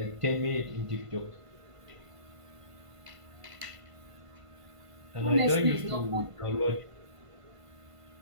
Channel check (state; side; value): late; left; 1.5 ms